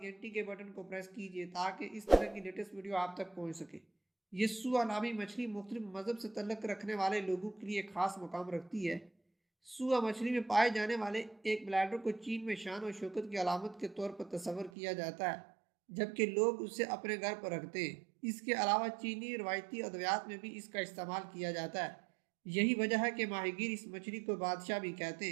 के बटन को प्रेस कीजिए ताकि इस तरह की लेटेस्ट वीडियो आप तक पहुंच सके। ये सुआ नामी मछली मुख्तलिफ मज़हब से तल्लुक़ रखने वाले लोगों के लिए खास मकाम रखती है। सुआ मछली में पाए जाने वाले एक ब्लैडर को चीन में शान और शौकत की अलामत के तौर पर तस्वर किया जाता है, जबकि लोग उसे अपने घर पर रखते हैं। इसके अलावा चीनी रवायती अद्वियात में भी इसका इस्तेमाल किया जाता है। यही वजह है कि माहीगीर इस मछली को बादशाह भी कहते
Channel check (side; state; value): left; drops out; at 14.7 s